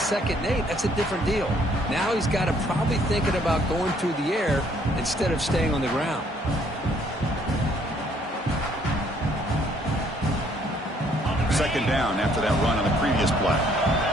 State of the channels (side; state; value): both; normal; correlation 0.65